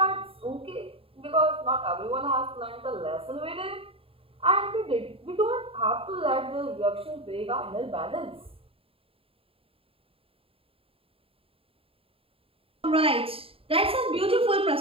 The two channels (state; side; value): late; left; 0.27 ms